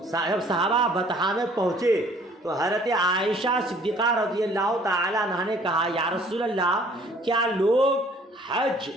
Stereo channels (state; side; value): normal; both; correlation 0.56